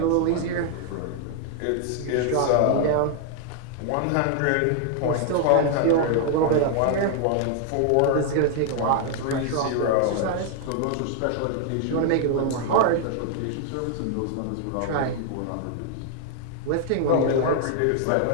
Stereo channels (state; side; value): different; both; correlation 0.00